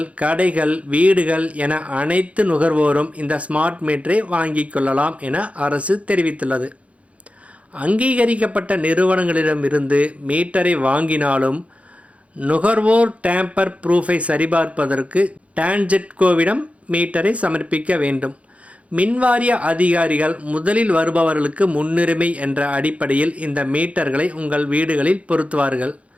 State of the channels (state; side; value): late; left; 0.064 ms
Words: கடைகள், வீடுகள் என அனைத்து நுகர்வோரும் இந்த ஸ்மார்ட் மீட்டரை வாங்கிக் கொள்ளலாம் என அரசு தெரிவித்துள்ளது. அங்கீகரிக்கப்பட்ட நிறுவனங்களிடமிருந்து மீட்டரை வாங்கினாலும் நுகர்வோர் டேம்பர் ப்ரூஃபை சரிபார்ப்பதற்கு டான்ஜெட்கோவிடம் மீட்டரை சமர்ப்பிக்க வேண்டும். மின்வாரிய அதிகாரிகள் முதலில் வருபவர்களுக்கு முன்னுரிமை என்ற அடிப்படையில் இந்த மீட்டர்களை உங்கள் வீடுகளில் பொருத்துவார்கள்.